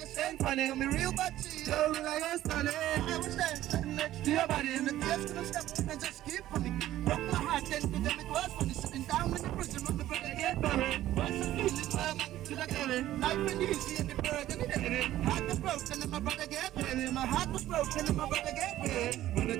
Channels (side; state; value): left; quieter; 13.9 dB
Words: ain't funny. I'm a real bad cheat. Tell me like I'm stunning. I was there, standing next to your body. And the tears couldn't stop and just keep funny. Broke my heart, then to them it was funny. Sitting down in the prison on the brother get buried. What's the feeling, my man, to the carry? Life been easy and the burden is heavy. Heart was broken and my brother get buried. My heart was broken and my brother get buried. When I